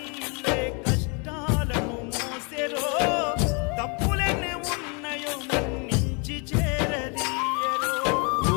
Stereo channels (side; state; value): right; quieter; 33.5 dB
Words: కష్టాలను మోసెరో తప్పులెన్ని ఉన్నాయో మన్నించి చేరదీయరో